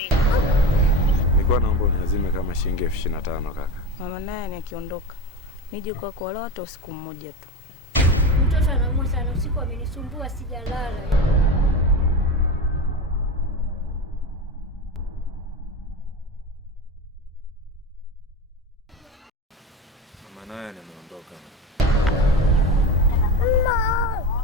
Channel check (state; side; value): normal; both; correlation 0.25